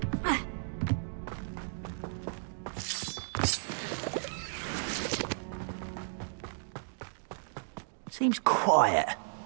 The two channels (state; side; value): silent; left; digital silence